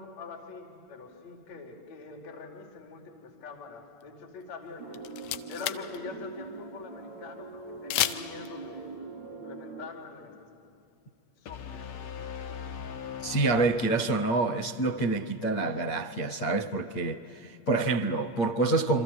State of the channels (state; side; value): late; right; 8.6 ms